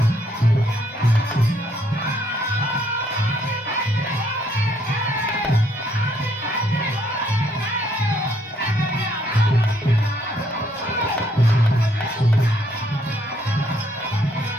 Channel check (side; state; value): both; normal; correlation 0.69